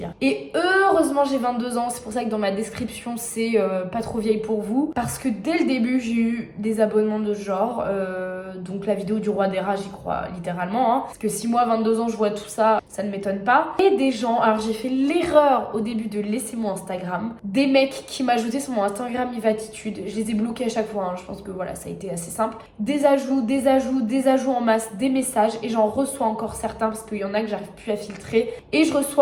Et heureusement j'ai 22 ans, c'est pour ça que dans ma description c'est pas trop vieille pour vous, parce que dès le début j'ai eu des abonnements de ce genre, donc la vidéo du roi des rats j'y crois littéralement, hein, parce que si moi 22 ans je vois tout ça, ça ne m'étonne pas. Et des gens, alors j'ai fait l'erreur au début de laisser mon Instagram, des mecs qui m'ajoutaient sur mon Instagram Evatitude, je les ai bloqués à chaque fois, hein. Je pense que voilà, ça a été assez simple, des ajouts en masse, des messages, et j'en reçois encore certains parce qu'il y en a que j'arrive plus à filtrer. Et je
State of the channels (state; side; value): identical; both; correlation 1.00